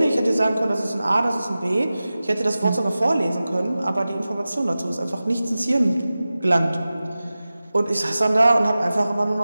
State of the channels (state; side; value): inverted; both; correlation -0.96